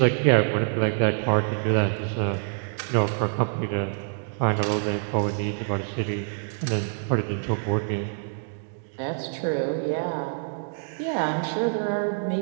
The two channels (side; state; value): left; silent; digital silence